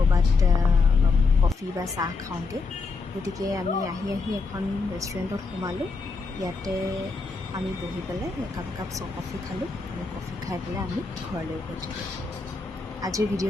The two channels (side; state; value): right; quieter; 4.3 dB